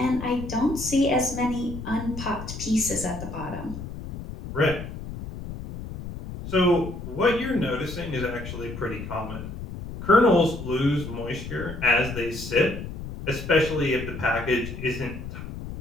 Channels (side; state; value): left; noise; rumble, 9 dB below the sound